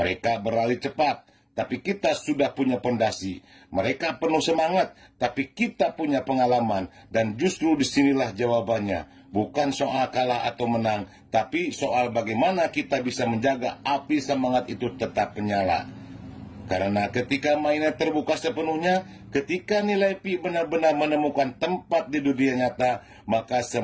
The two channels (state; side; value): identical; both; correlation 1.00